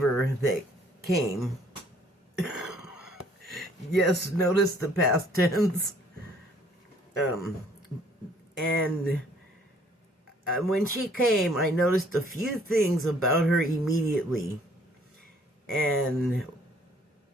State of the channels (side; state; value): both; normal; correlation 0.60